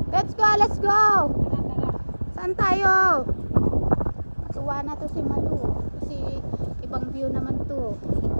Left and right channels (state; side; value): inverted; both; correlation -1.00